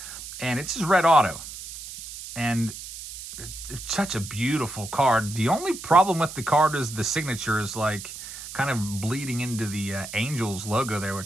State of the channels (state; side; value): noise; right; hiss, 11 dB below the sound